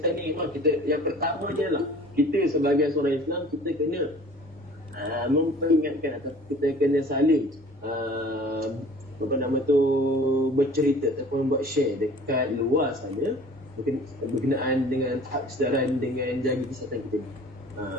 ni memang kita, yang pertama je lah, kita sebagai seorang Islam kita kena memperingatkan atau kita kena saling bercerita ataupun buat share dekat luar sana berkenaan dengan tahap kesedaran dengan jaga kesihatan kita ni.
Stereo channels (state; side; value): normal; both; correlation 0.47